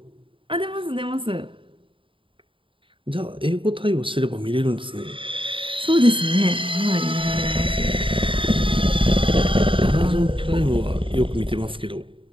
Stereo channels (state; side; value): late; left; 0.25 ms